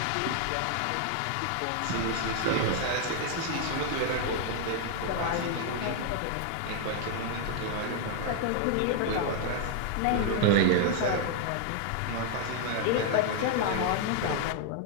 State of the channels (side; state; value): both; different; correlation 0.00